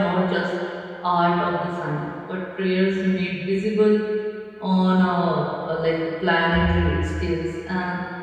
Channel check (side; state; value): both; identical; correlation 1.00